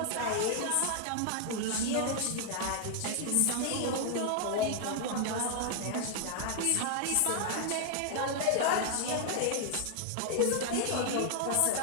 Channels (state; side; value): different; both; correlation 0.00